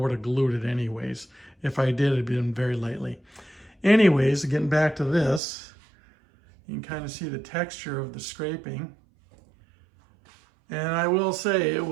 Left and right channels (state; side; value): drops out; left; at 5.4 s